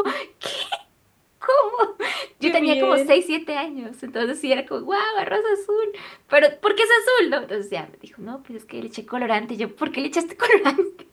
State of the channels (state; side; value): identical; both; correlation 1.00